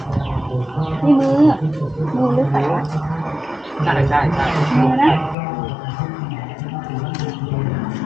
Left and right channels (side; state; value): right; drops out; at 5.4 s